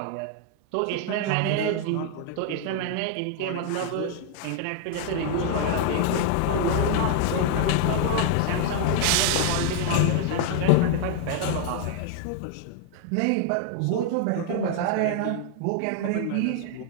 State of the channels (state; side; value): different; both; correlation 0.00